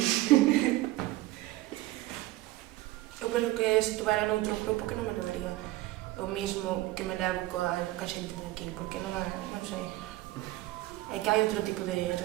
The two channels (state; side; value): quieter; left; 17.6 dB